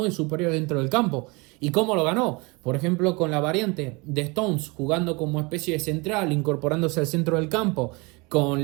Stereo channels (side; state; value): left; quieter; 27.3 dB